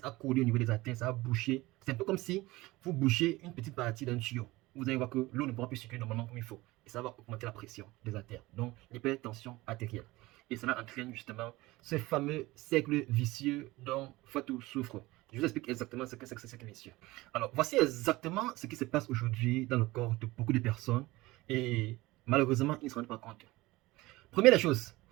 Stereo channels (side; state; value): left; quieter; 19.9 dB